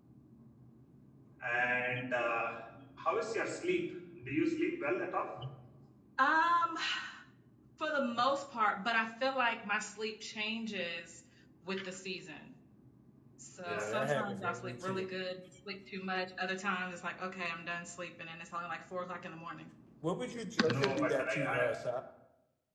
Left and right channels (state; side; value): identical; both; correlation 1.00